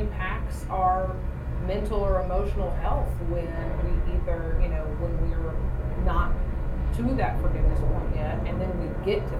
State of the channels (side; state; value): both; identical; correlation 1.00